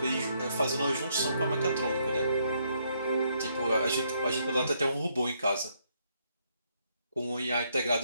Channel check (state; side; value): inverted; both; correlation -0.73